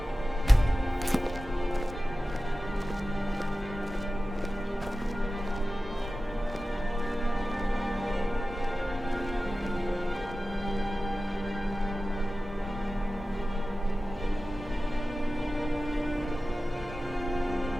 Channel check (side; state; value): both; normal; correlation 0.95